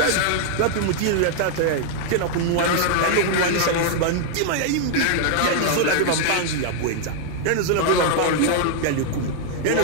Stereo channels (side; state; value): both; different; correlation 0.00